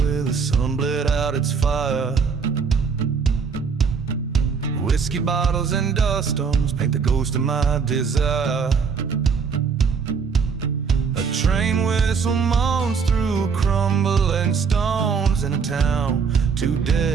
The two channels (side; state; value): left; quieter; 5.8 dB